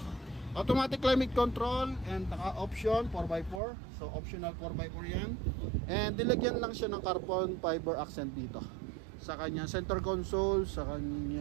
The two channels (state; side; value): drops out; left; at 3.6 s